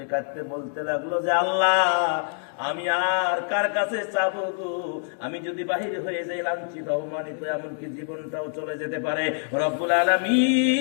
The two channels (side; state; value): right; silent; digital silence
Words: কাঁদতে বলতে লাগলো যে, আল্লাহ, আমি আর কার কাছে চাবো গো? আমি যদি বাহির হয়ে যাই, লাঞ্ছিত অপমানিত, এমনকি জীবনটাও চলে যেতে পারে। রব্বুল